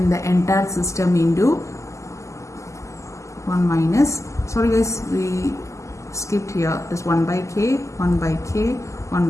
the entire system into 1 minus, sorry guys, we skipped here, this 1 by K, 1 by K, 1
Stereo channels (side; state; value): right; late; 0.15 ms